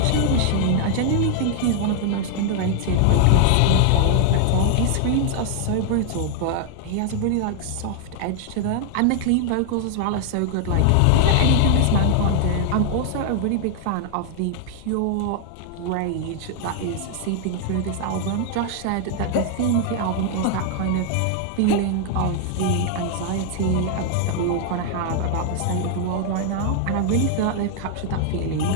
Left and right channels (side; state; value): both; different; correlation 0.00